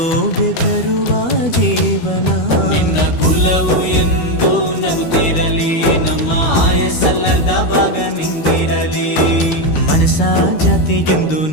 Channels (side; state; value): right; late; 12 ms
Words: ತರುವ ಜೀವನ. ನಿನ್ನ ಕುಲವು ಎಂದು ನಗುತ್ತಿರಲಿ, ನಮ್ಮ ಆಯಸ್ಸಲ್ಲರ್ಧ ಭಾಗ ನಿಂದಿರಲಿ. ಮನಸ ಜಾತಿಗೆಂದು